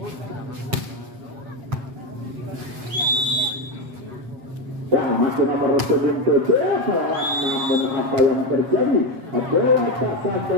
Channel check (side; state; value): left; late; 7.4 ms